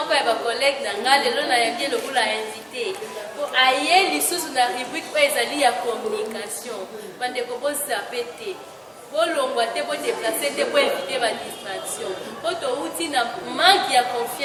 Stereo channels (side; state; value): both; identical; correlation 1.00